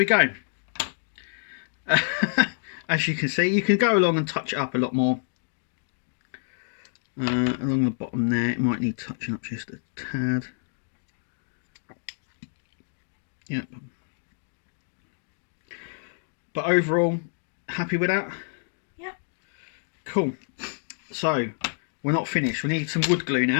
go. As you can see, you can go along and touch it up a lot more. Along the bottom there, it might need touching up just a tad. Yep. But overall, happy with that? Yep. Cool. So, we're not finished. We need some wood glue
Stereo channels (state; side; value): silent; right; digital silence